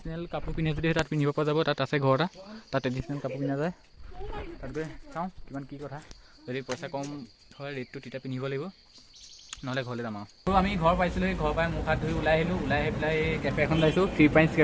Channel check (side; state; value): both; identical; correlation 1.00